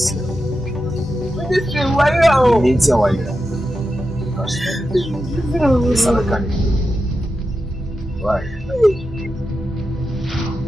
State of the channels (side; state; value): both; normal; correlation 0.89